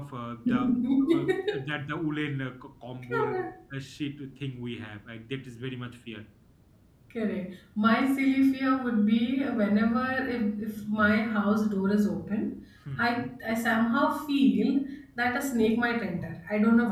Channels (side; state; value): both; identical; correlation 1.00